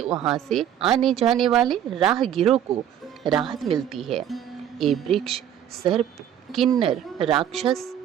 वहां से आने जाने वाले राहगीरों को राहत मिलती है। ये वृक्ष सर्प, किन्नर, राक्षस,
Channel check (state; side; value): quieter; left; 10.1 dB